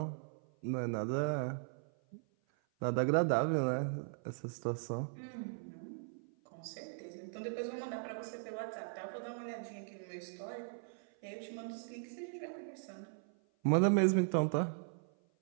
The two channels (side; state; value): left; silent; 52 dB below the other